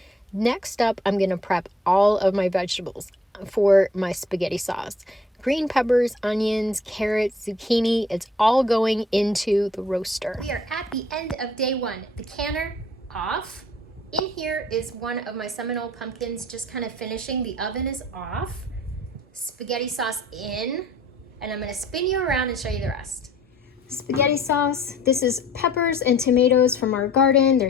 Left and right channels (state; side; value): normal; both; correlation 0.57